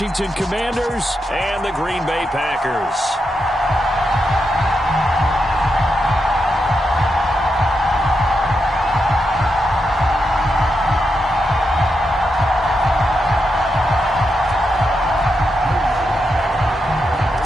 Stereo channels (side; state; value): both; normal; correlation 0.85